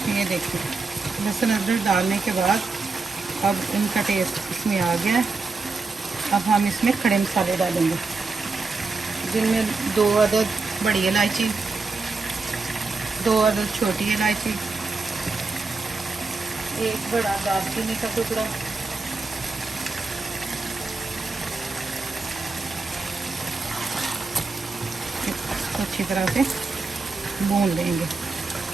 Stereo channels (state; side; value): quieter; left; 4.0 dB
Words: ये देखिए लहसुन अदरक डालने के बाद अब इनका टेस्ट इसमें आ गया है। अब हम इसमें खड़े मसाले डालेंगे, जिनमें 2 अदद बड़ी इलायची, 2 अदद छोटी इलायची, 1 बड़ा दालचीनी का टुकड़ा, इसको अच्छी तरह से भून लेंगे